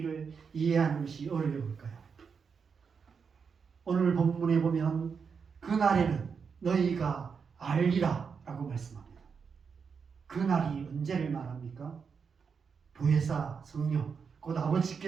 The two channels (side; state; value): left; quieter; 6.0 dB